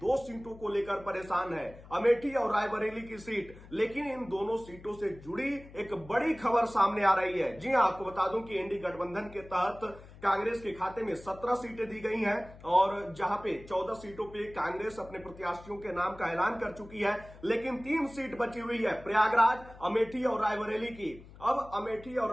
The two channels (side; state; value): left; noise; hum, 19 dB below the sound